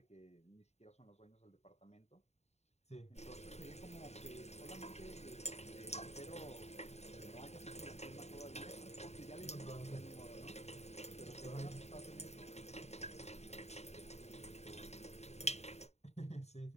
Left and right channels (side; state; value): right; late; 0.32 ms